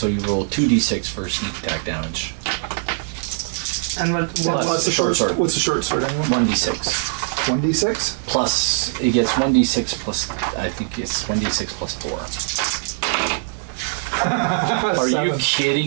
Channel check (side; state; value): left; silent; digital silence